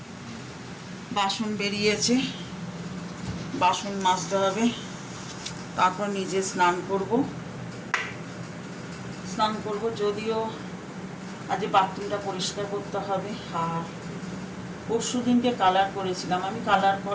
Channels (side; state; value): both; identical; correlation 1.00